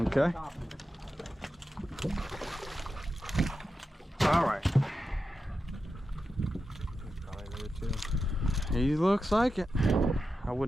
okay. All right. Probably there too. He looks like it. I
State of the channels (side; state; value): both; normal; correlation 0.90